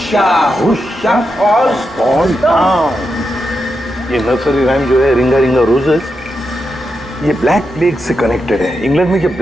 hush a all fall down. ये नर्सरी राइम जो है रिंगा रिंगा रोजेस, ये ब्लैक प्लेग से कनेक्टेड है। इंग्लैंड में जब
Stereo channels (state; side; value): normal; both; correlation 0.86